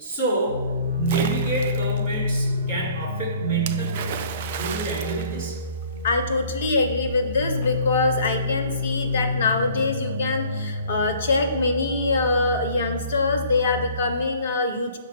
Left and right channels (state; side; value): inverted; both; correlation -0.54